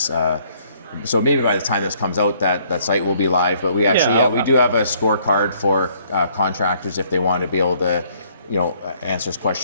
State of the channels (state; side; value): inverted; both; correlation -0.64